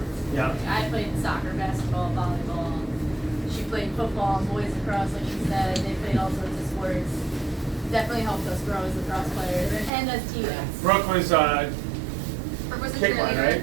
Yeah. I played soccer, basketball, volleyball. She played football, boys lacrosse, like you said. They played all sorts of sports. Definitely helped us grow as lacrosse players and as teammates. Brooke was Brooke was a kick line, cheerleader. right?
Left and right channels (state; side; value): drops out; left; at 9.9 s